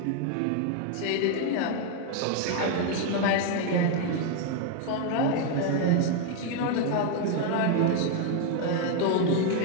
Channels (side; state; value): both; different; correlation 0.01